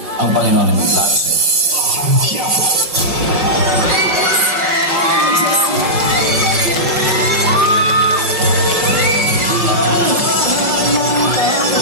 ang Panginoon ang may plano sa'yo.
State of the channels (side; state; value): left; late; 5.3 ms